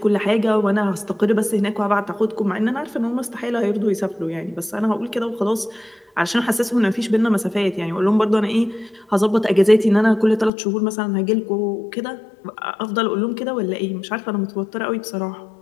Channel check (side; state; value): right; drops out; at 10.5 s